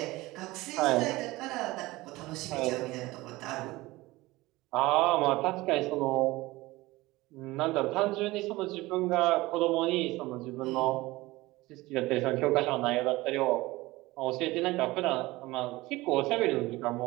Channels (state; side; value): quieter; left; 19.9 dB